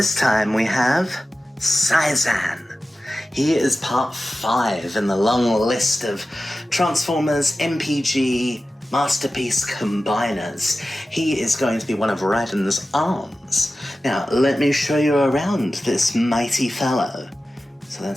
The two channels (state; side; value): normal; both; correlation 0.95